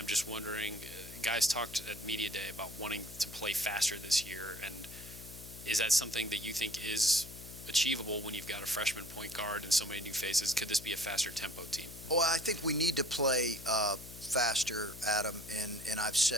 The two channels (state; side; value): noise; left; hum, 15 dB below the sound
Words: just wondering, guys talked at Media Day about wanting to play faster this year, and is that something that you think is achievable when you've got a freshman point guard and so many new faces? Could this be a faster tempo team? Well, I think we need to play faster, Adam, and I've